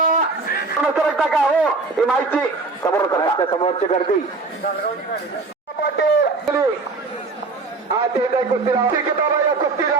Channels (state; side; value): quieter; left; 3.9 dB